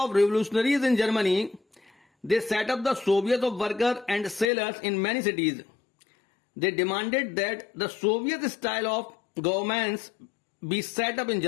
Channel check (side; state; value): right; drops out; at 4.5 s